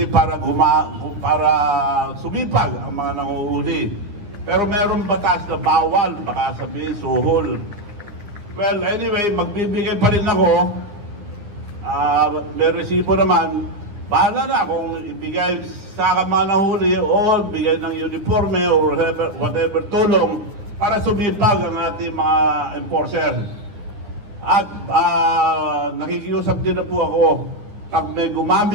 para sumipag ang mga nanguhuli. Pero mayroong batas na bawal, baka sabihin suhol. Well, anyway, magbibigay pa rin ako. May resibo naman. Bahala na kung ibigay sa mga nahuli o bigay ng uniforme or whatever tulong para sumipag ang ating mga enforcer. At nakikiusap din na po ako. Pag may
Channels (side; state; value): left; late; 9.8 ms